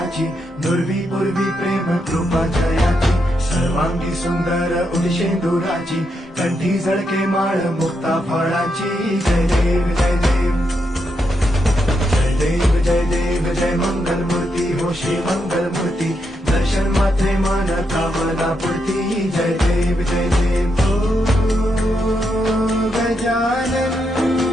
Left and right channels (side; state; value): both; normal; correlation 0.82